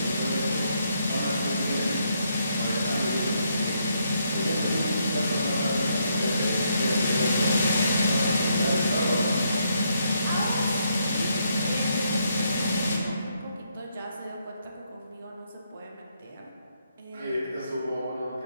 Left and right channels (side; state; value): both; inverted; correlation -0.75